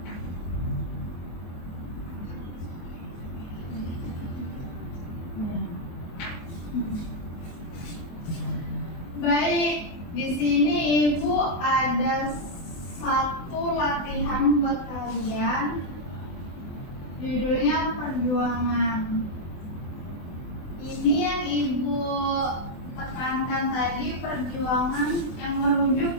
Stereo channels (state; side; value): late; right; 24 ms